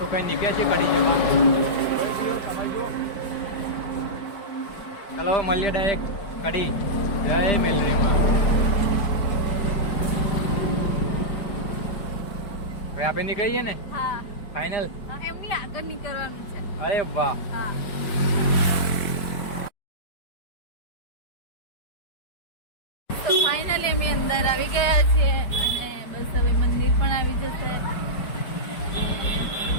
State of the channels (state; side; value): late; right; 5.0 ms